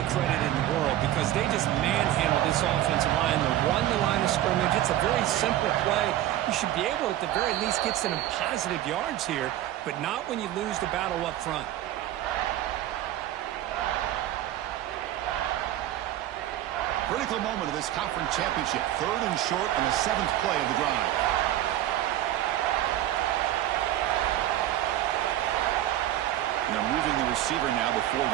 credit in the world because they just manhandled this offensive line. They won the line of scrimmage. It's a very simple play. You should be able to, at the very least, get some positive yards here, but not when you lose the battle up front. Critical moment of this conference championship. 3rd and short on the 7th play of the drive. And they're moving the receiver now before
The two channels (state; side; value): quieter; left; 13.2 dB